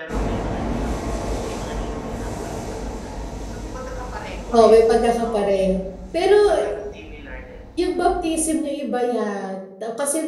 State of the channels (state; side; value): identical; both; correlation 1.00